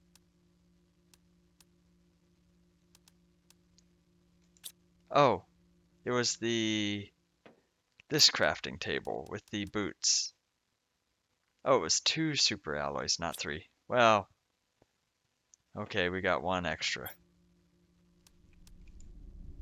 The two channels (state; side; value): identical; both; correlation 1.00